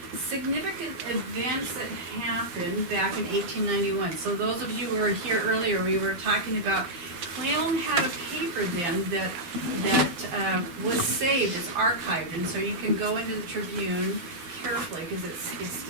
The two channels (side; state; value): left; late; 12 ms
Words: significant events that happened back in 1891. So those of you who were here earlier, we were talking about Clallam had a paper then that was saved, it's archived, and so you can go into the Tribune carefully because it's